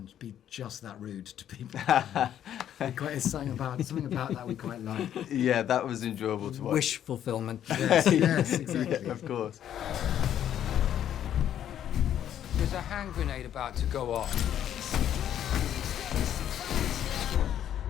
be just that rude to people. It's something about that we quite like. Yeah, that was enjoyable to watch. Wish fulfillment. Yes, exactly. Of course. There's a hand grenade about to go off.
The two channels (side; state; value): right; quieter; 10.4 dB